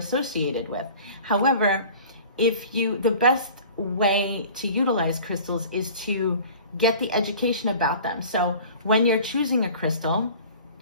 with. However, the best way to utilize crystals is to get the education about them. So when you're choosing a crystal,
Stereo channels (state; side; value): inverted; both; correlation -0.43